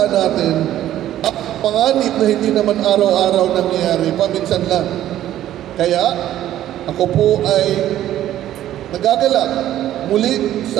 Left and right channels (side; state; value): left; quieter; 12.6 dB